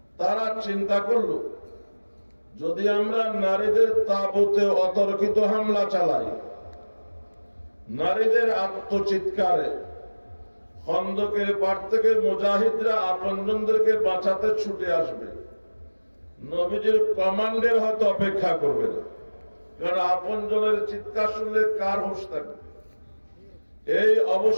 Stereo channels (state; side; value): inverted; both; correlation -1.00